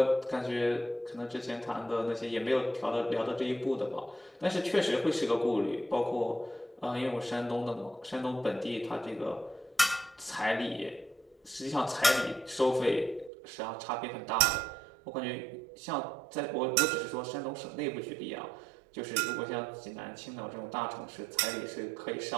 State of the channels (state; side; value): drops out; left; at 13.3 s